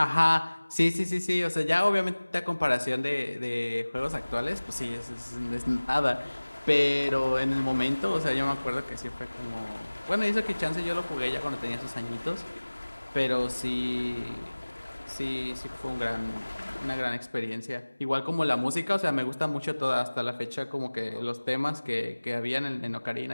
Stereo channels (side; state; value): both; inverted; correlation -1.00